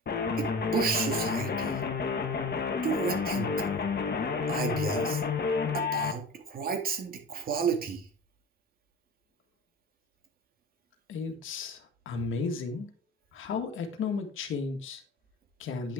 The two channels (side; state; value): both; normal; correlation 0.35